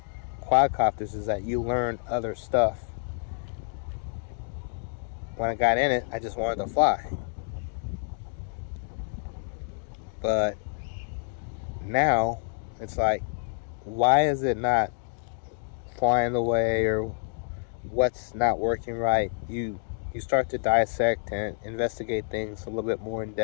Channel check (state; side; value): silent; right; digital silence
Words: quadcopters is that you learn other stuff. When I got in it, I just wanted to fly. But now it's like, why is it not flying the way, or what's not working right? You start to dissect and investigate things a little bit more in